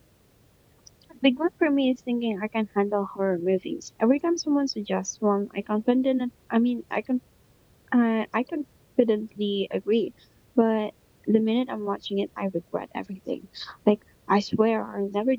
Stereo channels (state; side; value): identical; both; correlation 1.00